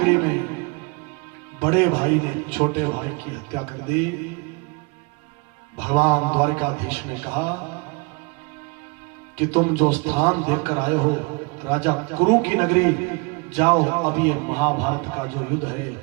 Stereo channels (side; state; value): left; quieter; 29.9 dB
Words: में बड़े भाई ने छोटे भाई की हत्या कर दी। भगवान द्वारिकाधीश ने कहा कि तुम जो स्थान देखकर आए हो राजा कुरु की नगरी, जाओ, अभी ये महाभारत का जो युद्ध है